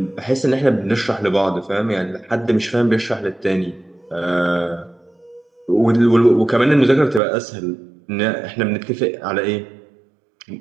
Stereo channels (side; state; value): left; drops out; at 7.2 s